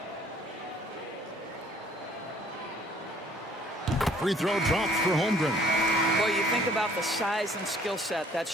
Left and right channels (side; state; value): both; normal; correlation 0.57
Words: Free throw drops for Holmgren. Well, you think about the size and skill set that